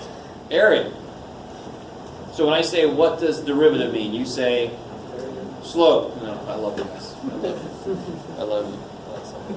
area. So when I say what does derivative mean, you say slope. No, I love you guys. I love you.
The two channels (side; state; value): both; identical; correlation 1.00